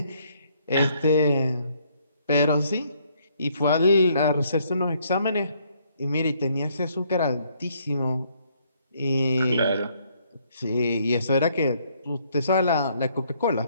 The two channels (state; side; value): inverted; both; correlation -0.68